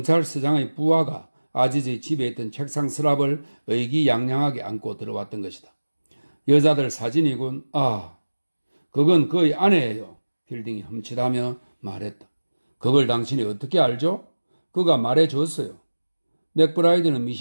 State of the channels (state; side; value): inverted; both; correlation -1.00